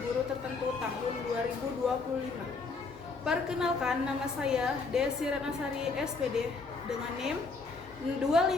Guru Tertentu tahun 2025. Perkenalkan, nama saya Desi Renasari SPD dengan NIM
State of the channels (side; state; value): right; quieter; 4.2 dB